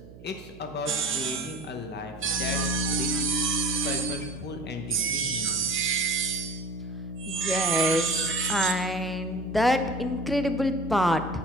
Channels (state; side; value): noise; right; hum, 18 dB below the sound